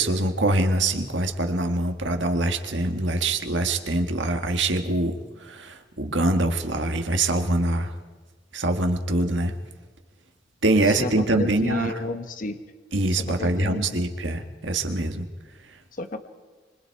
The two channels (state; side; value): normal; both; correlation 0.55